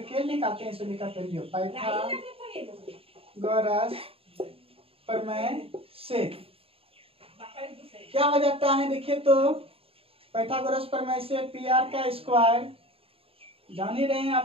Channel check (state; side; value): late; left; 0.27 ms